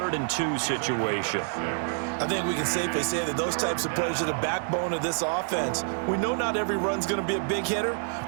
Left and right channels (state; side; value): silent; left; 59 dB below the other